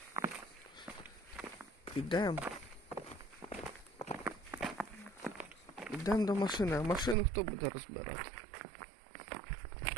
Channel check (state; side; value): drops out; left; at 7.2 s